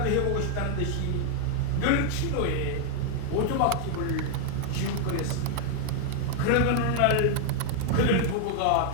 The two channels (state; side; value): different; both; correlation 0.00